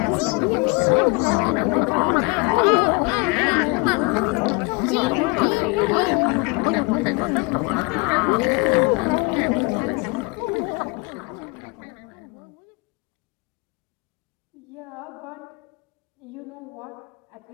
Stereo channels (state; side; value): quieter; right; 29.1 dB